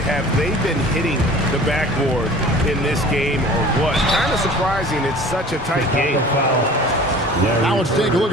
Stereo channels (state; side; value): normal; both; correlation 0.44